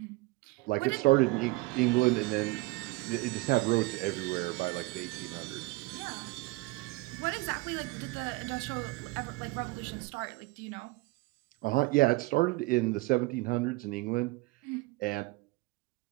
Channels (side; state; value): left; quieter; 22.4 dB